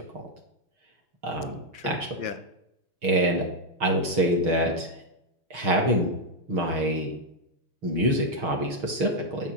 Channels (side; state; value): left; late; 6.5 ms